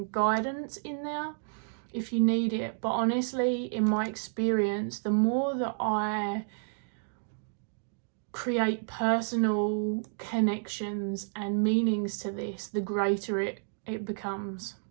guidance in there if you need it. But honestly, in my experience, the more that I create personal connections and meanings to this, the greater it becomes.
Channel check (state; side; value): silent; left; digital silence